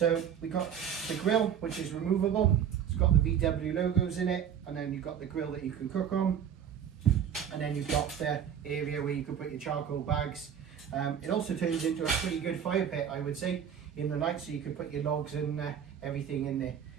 we got the grill, which is removable. It's got the VW logos in it, and then you've got the grill that you can cook on, and then you've got the area where you can put your charcoal bags. It also turns into a pretty good fire pit, I would say, in the night, so you can put your logs and everything in there.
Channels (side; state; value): left; quieter; 8.6 dB